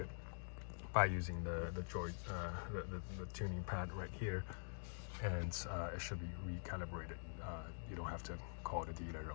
by using the tuning pad right here, and it should be recalibrated. You don't have to call the dealer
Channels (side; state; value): right; silent; digital silence